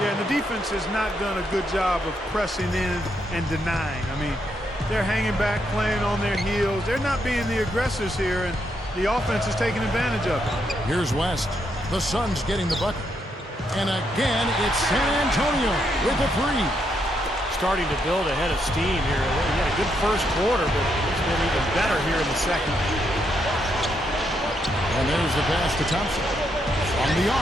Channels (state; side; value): normal; both; correlation 0.78